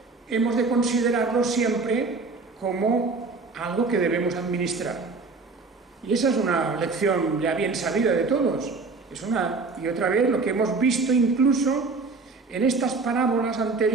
hemos de considerarlo siempre como algo que debemos administrar. Y esa es una lección ya bien sabida de todos. Es una y otra vez lo que hemos visto incluso en estas parábolas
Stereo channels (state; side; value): quieter; left; 4.0 dB